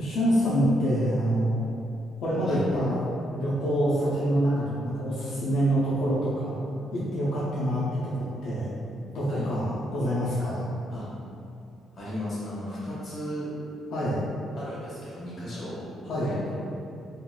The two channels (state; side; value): normal; both; correlation 0.76